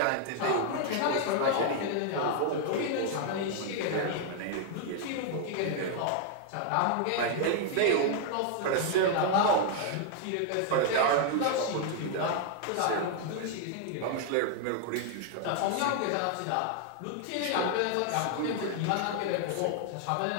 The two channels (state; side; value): different; both; correlation 0.00